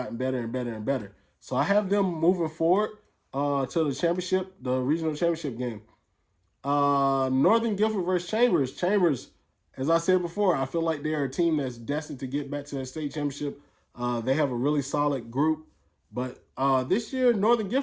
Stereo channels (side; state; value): both; identical; correlation 1.00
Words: better and better and better. So I have them moving forward to the championship, the regional championship game. Northern Gifford versus Chambers. Chambers, as I said before, I feel like they're a team that's destined to get back to the state championship. They have a really solid group. But this year, Northern